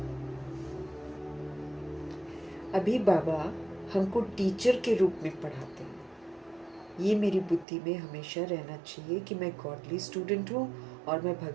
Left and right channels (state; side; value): drops out; left; at 7.7 s